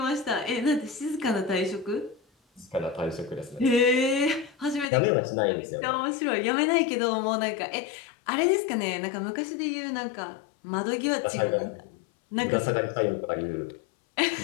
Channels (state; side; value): drops out; right; at 4.9 s